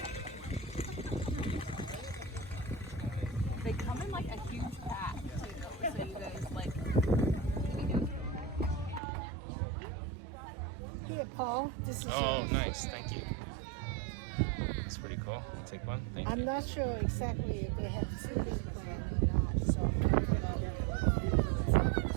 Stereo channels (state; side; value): drops out; left; at 9.0 s